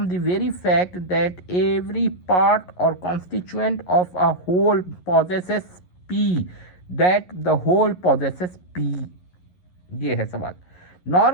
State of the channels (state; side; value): late; right; 11 ms